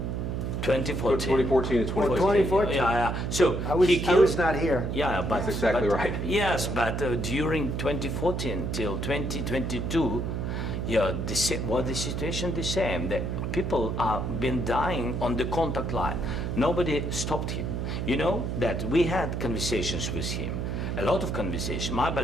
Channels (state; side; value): noise; right; hum, 2 dB below the sound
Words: 2014. 2014 and 2015. 2014. Yeah. So I was not here. Yeah, but that's exactly right. Yes, but during 2014 till 2022, yeah, the situation the same. The people have been dying on the contact line. Nobody stopped him. You know that we had conversations with him, a lot of conversations, my